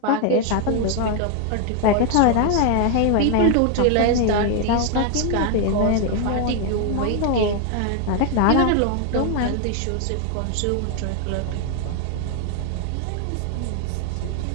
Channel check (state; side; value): different; both; correlation 0.00